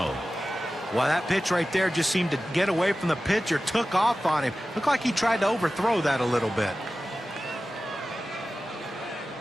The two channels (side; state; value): both; normal; correlation 0.95